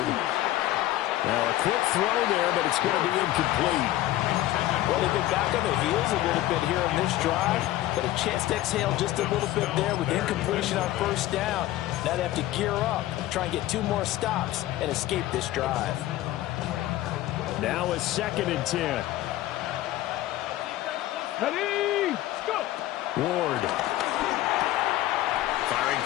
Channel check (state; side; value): quieter; right; 15.0 dB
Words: Now a quick throw there, but it's going to be incomplete. Well, they've been back on their heels a little bit here in this drive, but a chance to exhale just a little bit there with incompletion on 1st down. Now they have to gear up, try and get 2 more stops, and escape this drive. Now a 2nd and 10. Ready, go. Ward. Firing